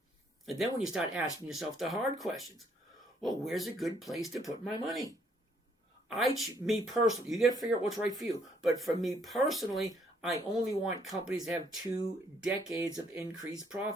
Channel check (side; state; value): both; normal; correlation 0.67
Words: And then when you start asking yourself the hard questions, well, where's a good place to put my money? Me personally, you got to figure out what's right for you. But for me personally, I only want companies to have 2 decades of increased